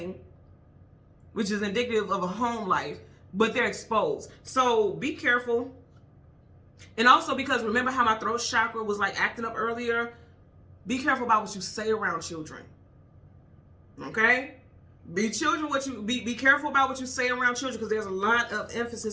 which is indicative of a home life, but they're exposed. So be careful. And also, because remember how my throat chakra was like acting up earlier, be careful about what you say around children. Okay? Be careful about what you say around children, because there's a lot of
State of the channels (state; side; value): identical; both; correlation 1.00